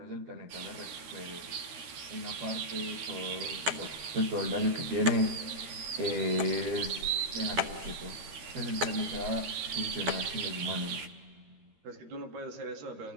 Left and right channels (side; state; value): left; late; 13 ms